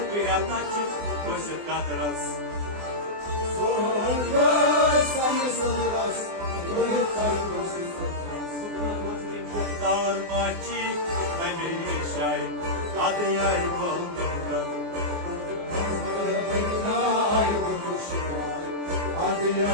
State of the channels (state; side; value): late; left; 24 ms